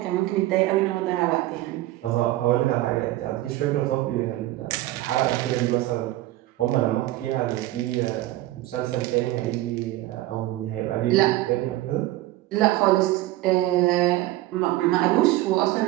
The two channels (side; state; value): left; quieter; 16.5 dB